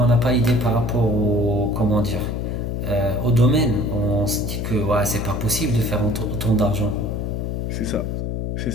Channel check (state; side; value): noise; left; hum, 2 dB below the sound